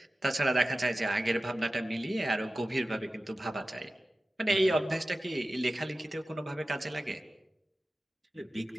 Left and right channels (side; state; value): both; normal; correlation 0.95